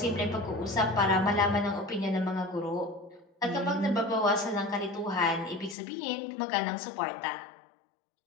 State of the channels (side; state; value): right; drops out; at 5.8 s